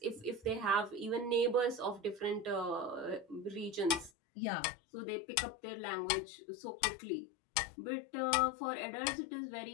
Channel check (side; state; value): right; drops out; at 4.1 s